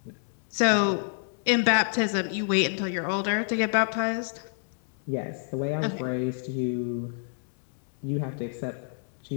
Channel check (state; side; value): silent; right; digital silence